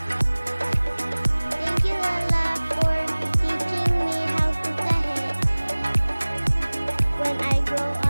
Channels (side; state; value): both; inverted; correlation -1.00